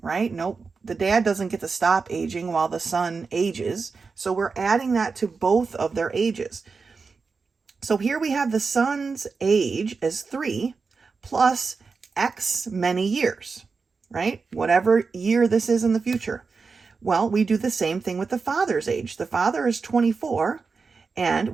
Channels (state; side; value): quieter; left; 4.7 dB